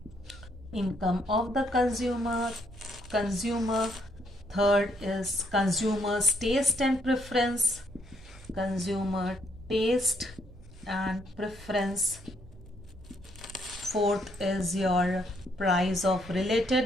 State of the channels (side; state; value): right; noise; hum, 21 dB below the sound